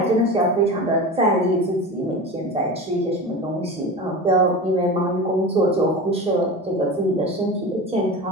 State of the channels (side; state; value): both; normal; correlation 0.29